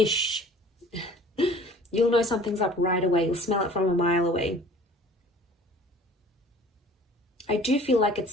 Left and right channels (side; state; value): both; normal; correlation 0.48